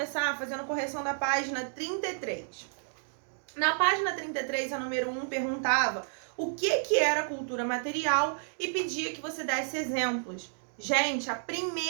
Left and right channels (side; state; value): left; silent; digital silence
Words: fazendo a correção da página 33. Na página 33, a número 1 perguntava o que era cultura material e pedia que você desse exemplos. Gente, a